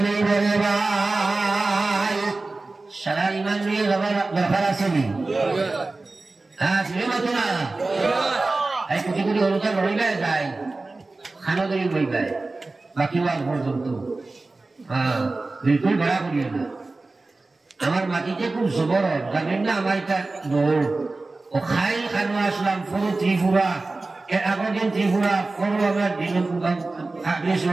নেই বলে ভাই। সারা ইমান লইয়া যাবার দরকার আছে নি? হ্যাঁ, শুনে মতো না এই কোটি কোটি অনুদান রইবে যায়, খানা ধরি বইবে বাকি ওয়াজ পর্যন্ত। হ্যাঁ, বিলকুল ভাড়া করিও না। আমার মাটিতে খুব জবর, জানেন না? আমার এটা দৌড় ও খাই খানো আসলাম পুরো ত্রিপুরা, এর আগের দিন ত্রিপুরা পুরো আমার দিন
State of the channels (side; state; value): left; quieter; 3.4 dB